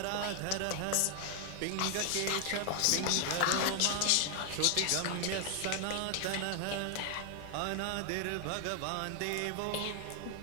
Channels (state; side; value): different; both; correlation 0.00